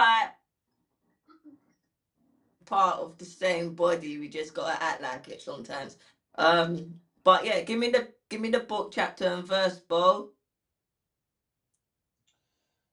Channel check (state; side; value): identical; both; correlation 1.00